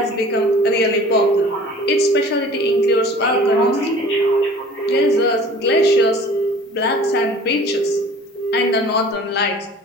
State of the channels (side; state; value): both; normal; correlation 0.46